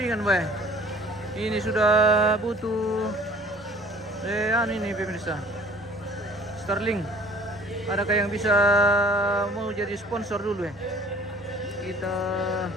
wah. Ini sudah butuh, ini pemirsa, Starlink. Adakah yang bisa mau jadi sponsor dulu ya? Kita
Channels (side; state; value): both; normal; correlation 0.51